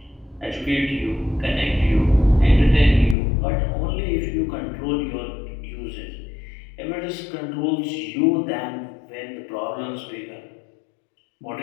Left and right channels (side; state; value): right; drops out; at 3.2 s